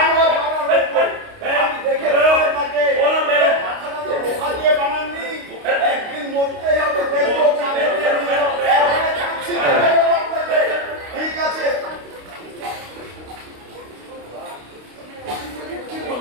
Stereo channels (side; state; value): left; late; 29 ms